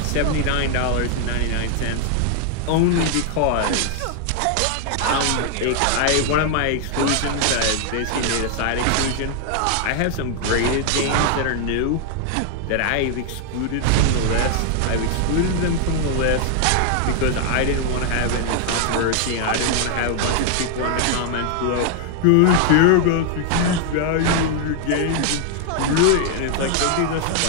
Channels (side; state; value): both; different; correlation 0.00